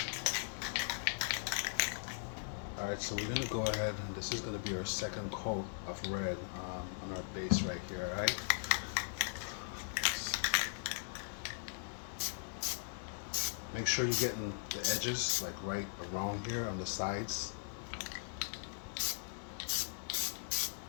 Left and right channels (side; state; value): right; silent; digital silence